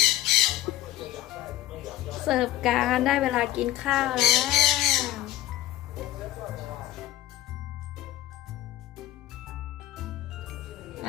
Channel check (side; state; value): right; quieter; 14.7 dB